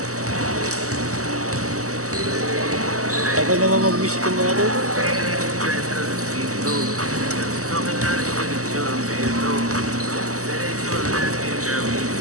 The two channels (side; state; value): left; late; 0.66 ms